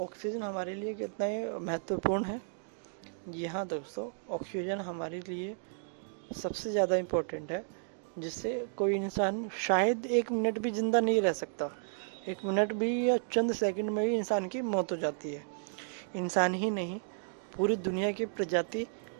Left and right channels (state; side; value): silent; left; digital silence